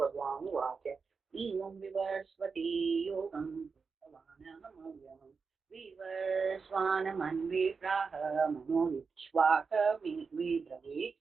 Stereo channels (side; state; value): left; quieter; 5.1 dB